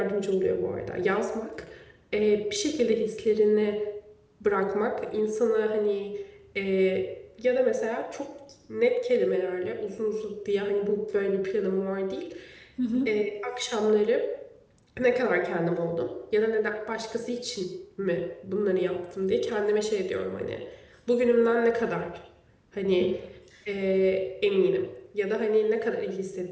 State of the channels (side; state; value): both; identical; correlation 1.00